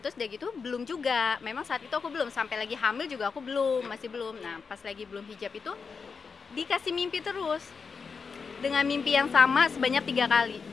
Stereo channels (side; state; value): right; quieter; 5.3 dB